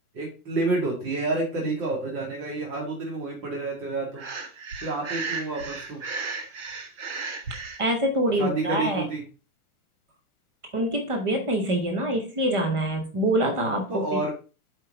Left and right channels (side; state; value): left; late; 1.5 ms